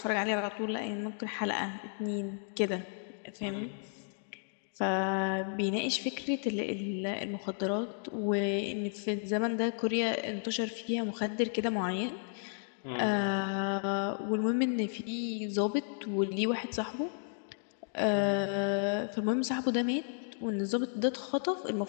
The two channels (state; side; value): silent; right; digital silence